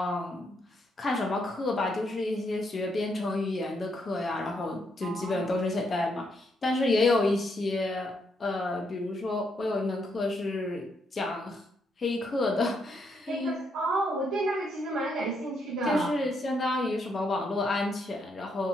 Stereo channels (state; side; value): normal; both; correlation 0.76